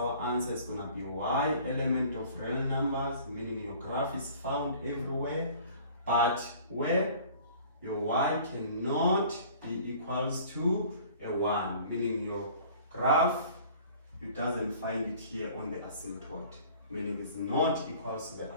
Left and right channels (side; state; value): both; inverted; correlation -0.49